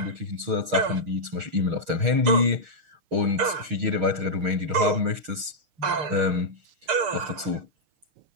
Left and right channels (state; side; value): late; left; 6.4 ms